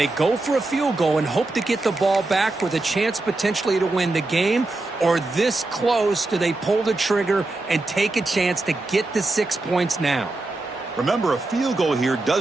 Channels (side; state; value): left; quieter; 3.0 dB